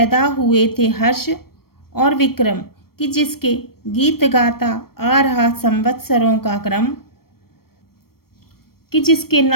हुए थे हर्ष और विक्रम, कि जिसके गीत गाता आ रहा संवत्सरों का क्रम, कि जिसके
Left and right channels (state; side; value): late; right; 0.94 ms